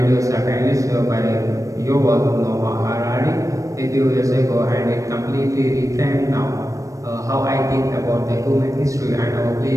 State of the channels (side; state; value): left; late; 0.16 ms